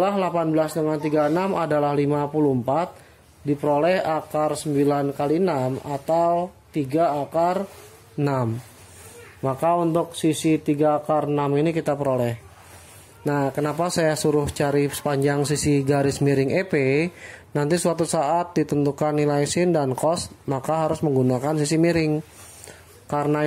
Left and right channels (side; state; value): both; identical; correlation 1.00